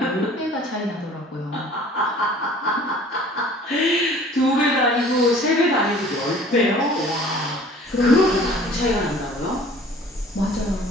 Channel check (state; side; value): normal; both; correlation 0.49